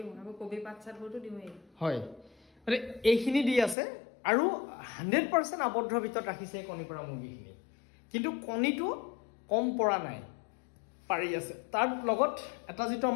আকৌ কবি পাত চাতবোৰতো দিওঁৱেই হয় মানে এইখিনি দি আছে আৰু 100% আবদ্ধ ভিতৰত ৰাখিছে কণী পৰা মুৰ্গীখিনি কিন্তু কণীটো কম পৰা নাই পাৰি আছে তাৰ লগত এটা যেটো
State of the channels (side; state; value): right; drops out; at 3.8 s